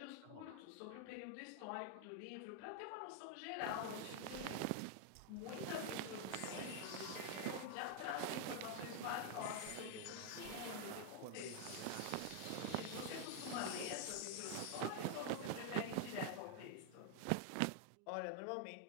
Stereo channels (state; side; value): different; both; correlation 0.00